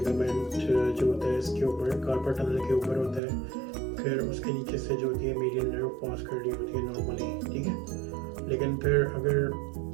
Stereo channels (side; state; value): left; drops out; at 3.2 s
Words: जो होता है इसके ऊपर कार्पल टनल के ऊपर होता है, फिर उसके नीचे से जो होती है मीडियन नर्व पास कर रही होती है नॉर्मली, ठीक है। लेकिन फिर अगर